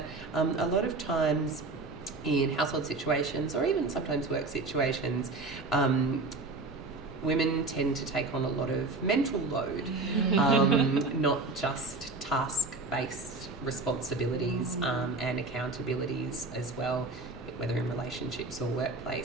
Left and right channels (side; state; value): left; quieter; 3.4 dB